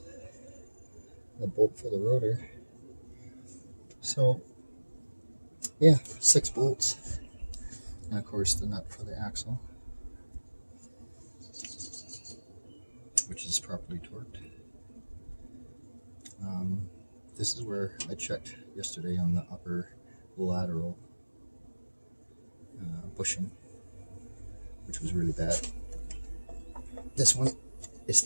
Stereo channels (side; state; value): both; inverted; correlation -1.00